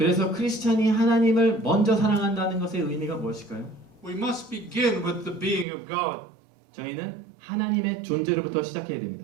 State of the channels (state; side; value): drops out; left; at 5.7 s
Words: 크리스찬이 하나님을 먼저 사랑한다는 것의 의미가 무엇일까요? We must begin with the being of God. 저희는 하나님의 존재로부터 시작해야